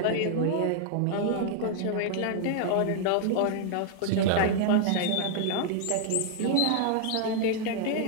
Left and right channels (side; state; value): both; different; correlation 0.00